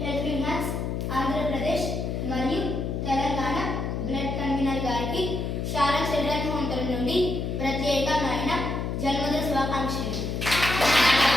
హెల్పింగ్ హ్యాండ్స్ ఆంధ్రప్రదేశ్ మరియు తెలంగాణ బ్లడ్ కన్వీనర్ గారికి శారా చిల్డ్రన్ హోమ్ తరఫు నుండి ప్రత్యేకమైన జన్మదిన శుభాకాంక్షలు.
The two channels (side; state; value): left; noise; hum, 2 dB below the sound